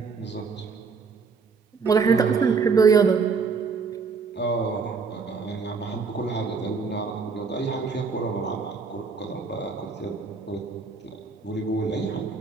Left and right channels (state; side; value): quieter; left; 5.1 dB